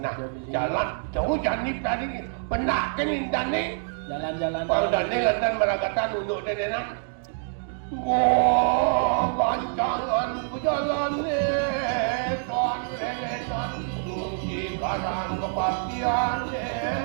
jalan jauh jani tadi benak kan ini. Jalan-jalan. Pandane lantan meragatan untuk dedenan. Wah, gancangan berjalan kan lelenan. Kunci karang kepastian.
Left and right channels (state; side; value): silent; left; 61 dB below the other